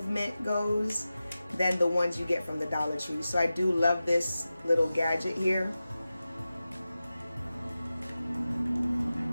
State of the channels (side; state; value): both; inverted; correlation -0.94